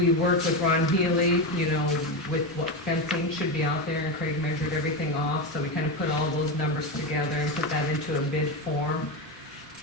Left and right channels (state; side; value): normal; both; correlation 0.14